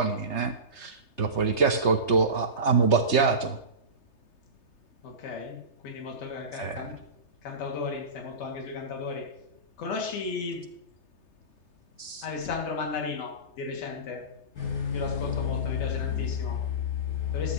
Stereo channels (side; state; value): right; late; 3.3 ms